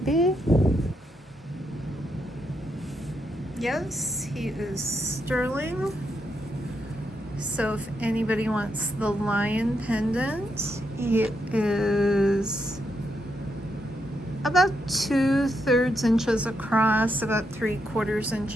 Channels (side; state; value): both; normal; correlation 0.80